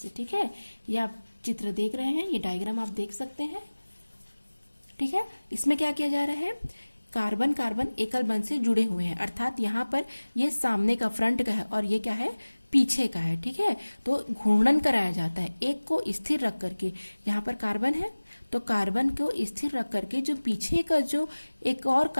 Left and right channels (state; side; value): inverted; both; correlation -1.00